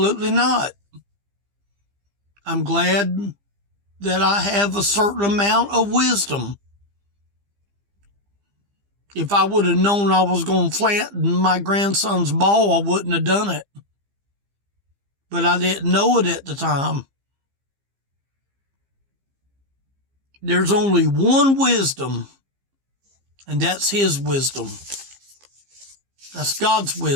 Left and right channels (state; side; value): late; left; 15 ms